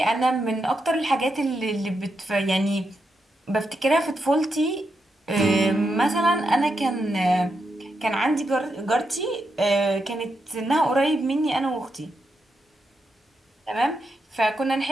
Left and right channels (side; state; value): both; normal; correlation 0.84